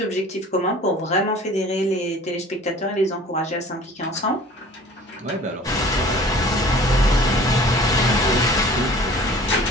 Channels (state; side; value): normal; both; correlation 0.47